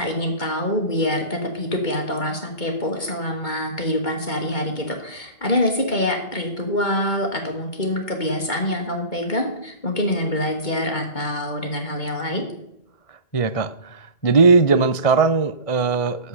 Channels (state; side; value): late; right; 2.2 ms